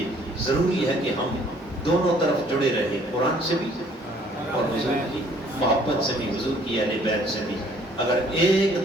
ضروری ہے کہ ہم دونوں طرف جڑے رہیں، قرآن سے بھی اور حضور کی محبت سے بھی، حضور کی اہل بیت سے بھی۔ اگر ایک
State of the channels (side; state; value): both; normal; correlation 0.60